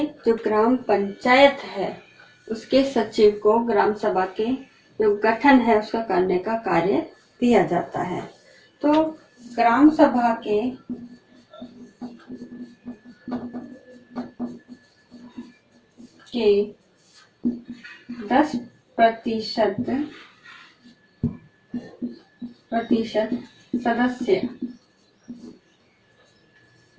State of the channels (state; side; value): identical; both; correlation 1.00